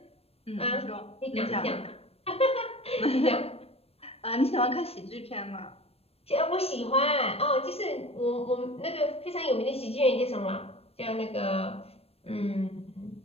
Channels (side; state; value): right; late; 0.29 ms